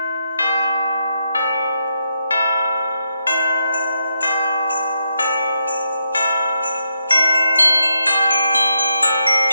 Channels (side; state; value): both; inverted; correlation -0.81